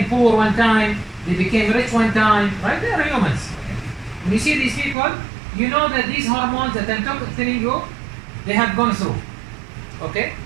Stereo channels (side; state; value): left; drops out; at 5.0 s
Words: poor one time. They became rich one time, right? They are humans. Okay? When you see these people, you know that these hormones that I'm telling you, they have gone through. Okay?